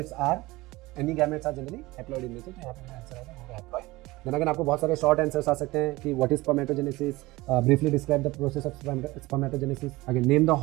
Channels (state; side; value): quieter; left; 20.3 dB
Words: are, any gametes are generally haploid in nature, तो यहाँ पे आंसर आएगा वो हैप्लॉइड। देन अगर आपको बहुत सारे शॉर्ट आंसर्स आ सकते हैं कि what is spermatogenesis, briefly describe the process of spermatogenesis, again name the